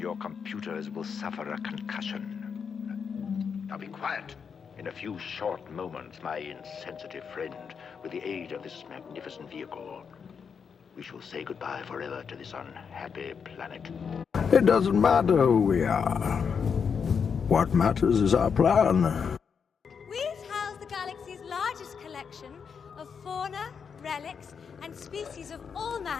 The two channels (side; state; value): right; quieter; 6.4 dB